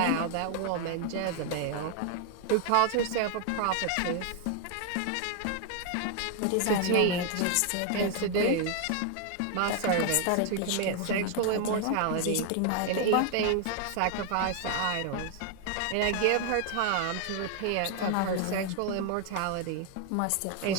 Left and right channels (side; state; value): both; different; correlation 0.00